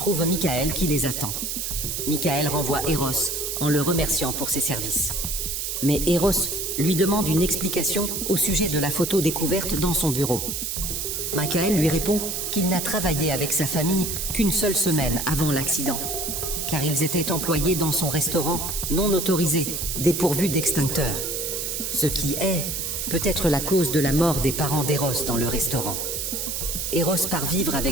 Michael qui les attend. Michael renvoie Eros en le remerciant pour ses services. Mais Eros lui demande une explication au sujet de la photo découverte dans son bureau. Michael lui répond qu'il n'a travaillé avec sa famille qu'une seule semaine avant l'accident, car ils étaient employés dans son restaurant non autorisé, dépourvu d'extincteur. Ce qui est peut-être la cause de la mort des parents d'Eros dans le restaurant. Eros part vivre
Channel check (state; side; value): noise; right; hiss, 3 dB below the sound